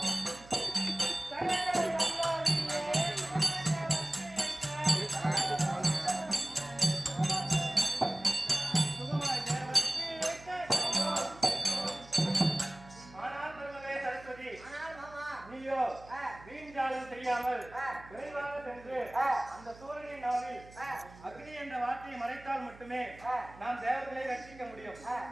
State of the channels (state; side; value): noise; right; hum, 20 dB below the sound